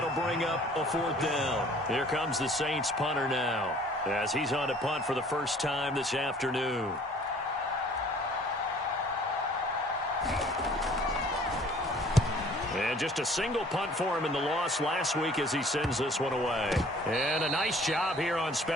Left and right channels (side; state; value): both; normal; correlation 0.53